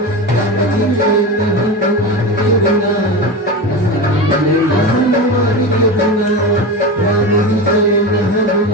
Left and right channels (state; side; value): normal; both; correlation 0.23